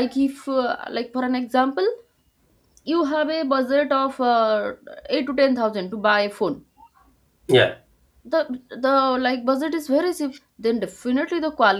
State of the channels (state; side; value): identical; both; correlation 1.00